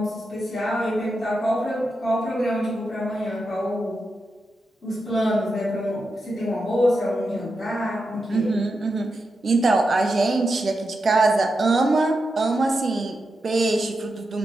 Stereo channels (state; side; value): normal; both; correlation 0.88